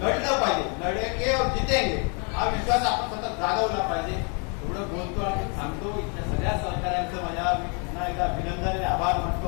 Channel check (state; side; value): quieter; right; 36.2 dB